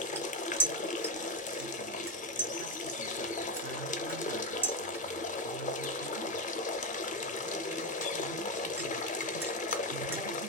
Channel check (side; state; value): both; normal; correlation 0.10